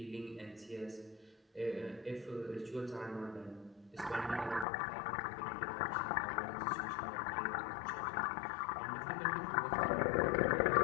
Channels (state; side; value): drops out; right; at 4.7 s